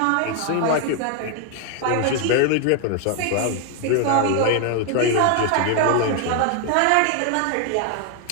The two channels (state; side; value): different; both; correlation 0.00